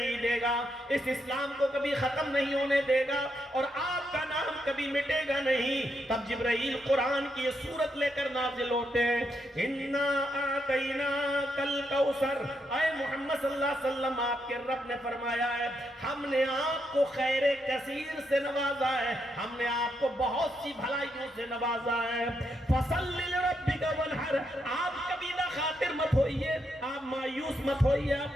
دے گا، اس اسلام کو کبھی ختم نہیں ہونے دے گا اور آپ کا نام کبھی مٹے گا نہیں۔ تب جبرائیل قرآن کی یہ سورت لے کر نازل ہوتے ہیں، اِنَّا آتَيْنَاكَ الْكَوْثَرَ، اے محمد صلی اللہ علیہ وسلم آپ کے رب نے فرمایا ہے ہم نے آپ کو خیر کثیر سے نوازا ہے، ہم نے آپ کو بہت سی بھلائیوں سے نوازا ہے۔ فَصَلِّ لِرَبِّكَ وَانْحَرْ، آپ کبھی نہ خاطر مت ہوئیے، آپ مایوس مت ہوئیے، آپ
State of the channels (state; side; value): normal; both; correlation 0.80